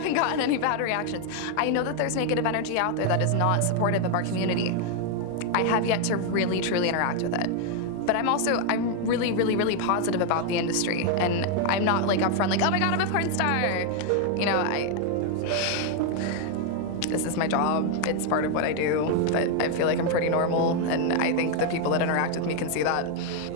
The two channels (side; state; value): both; different; correlation 0.00